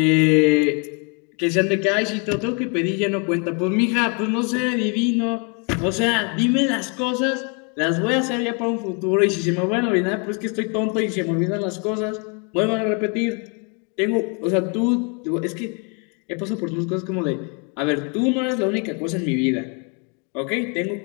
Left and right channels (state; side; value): quieter; right; 35.3 dB